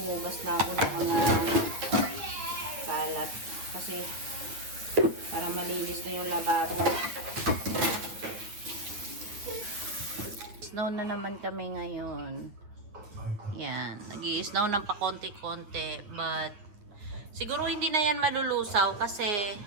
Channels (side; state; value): left; late; 9.3 ms